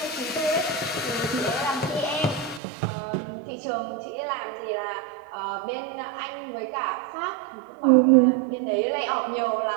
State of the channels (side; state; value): left; drops out; at 2.6 s